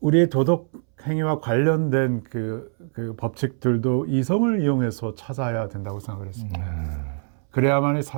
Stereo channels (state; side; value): silent; left; 63 dB below the other